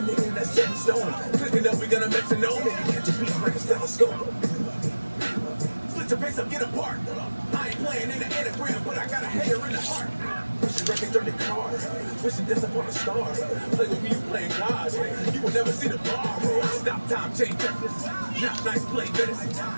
nigga that's set in stone. Clicking up, we gonna metronome. And you catch a beat like a stethoscope. Split your pace up, get apart. I ain't playing in the anagram, but I got a hater in the heart. Wishing records dirty car. Wishing death upon a star. Play with me, you playing God. You will never see the bar. Stop time, change records. Not nice play medicine.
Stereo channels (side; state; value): both; inverted; correlation -1.00